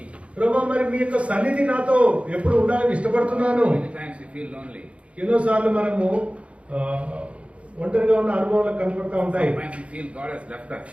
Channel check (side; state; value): left; late; 0.062 ms